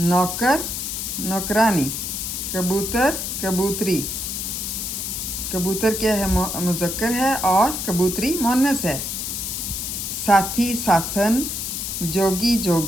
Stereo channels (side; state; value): left; noise; hiss, 4 dB below the sound